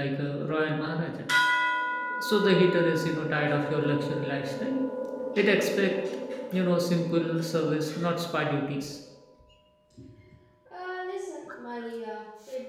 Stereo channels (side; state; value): both; identical; correlation 1.00